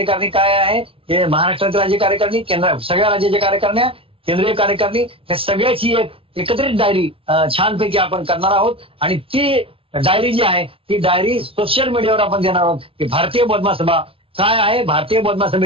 काय आहे, हे महाराष्ट्रातील राज्य कार्यकारिणी, सगळ्या राज्याच्या कार्यकारिण्या, केंद्रीय कार्यकारिणी, या सगळ्याची एक एकत्रित डायरी छानपैकी आपण करणार आहोत. आणि ती डायरी जी आहे ती डायरी सोशल मीडियावर आपण देणार आहोत की भारतीय बौद्ध महासभा काय आहे, भारतीय बौद्ध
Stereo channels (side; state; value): left; late; 0.26 ms